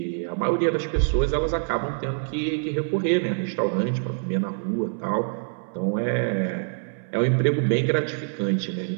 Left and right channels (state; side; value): silent; left; 62 dB below the other